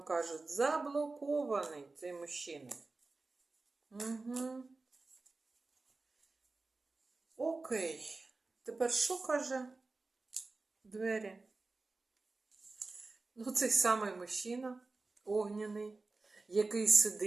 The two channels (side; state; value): left; quieter; 3.6 dB